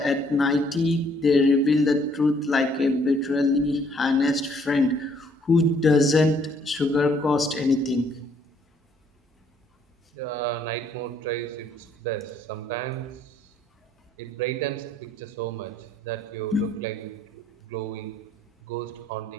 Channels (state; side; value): normal; both; correlation 0.65